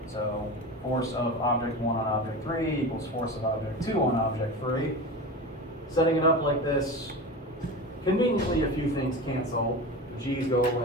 So force of object 1 on object 3 equals force of object 2 on object 3. Setting it up like this, conveniently a few things cancel. G's go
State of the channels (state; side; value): normal; both; correlation 0.28